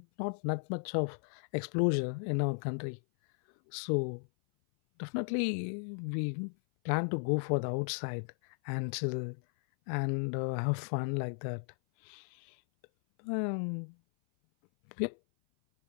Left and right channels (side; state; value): right; silent; 54 dB below the other